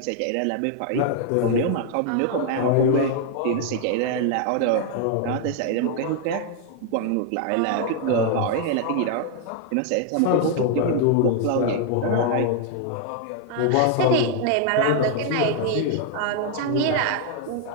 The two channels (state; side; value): different; both; correlation 0.00